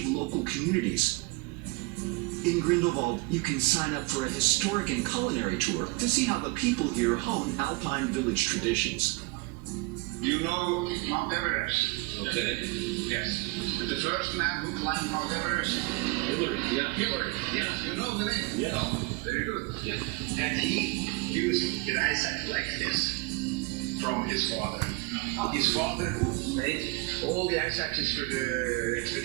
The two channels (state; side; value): quieter; left; 24.4 dB